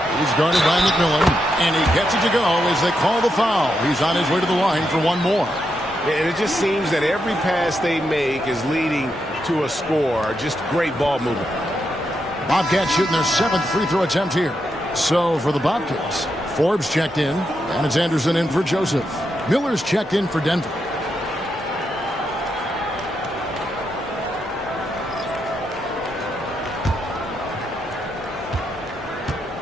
guarded by McMillan, and he gets it to go as they call the foul. He's on his way to the line for one more. And it just seems that every pass they make is leading to a score. Just great ball movement. Bobcats shooting their 7th free throw attempt here. So for the Bobcats, Forbes checked in, and it's Anderson in for Joseph. Miller's checked in for Denver.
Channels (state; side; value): normal; both; correlation 0.83